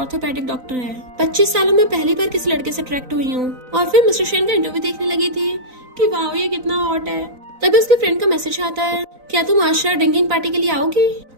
डॉक्टर है। 25 सालों में पहली बार किसी लड़के से अट्रैक्ट हुई हूँ। और फिर मिस्टर शन का इंटरव्यू देखने लगी थी कि वाह ये कितना हॉट है। तभी उसके फ्रेंड का मैसेज आता है, क्या तुम आज शायद ड्रिंकिंग पार्टी के लिए आओगी?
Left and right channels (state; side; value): late; left; 3.9 ms